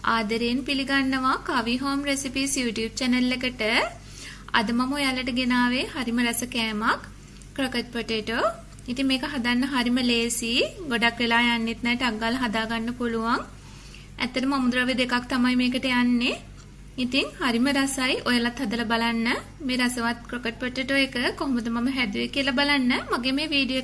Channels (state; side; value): identical; both; correlation 1.00